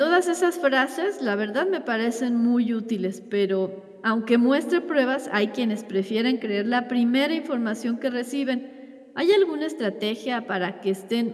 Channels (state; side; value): identical; both; correlation 1.00